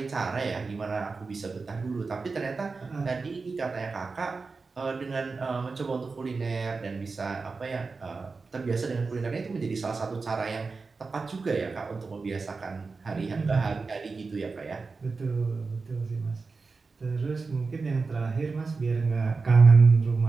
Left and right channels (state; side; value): quieter; left; 4.3 dB